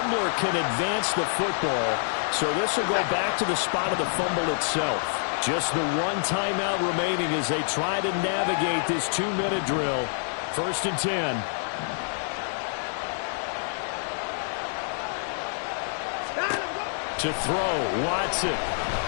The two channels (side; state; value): right; silent; digital silence